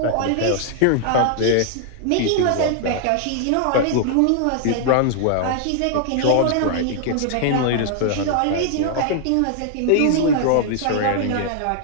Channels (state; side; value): different; both; correlation 0.00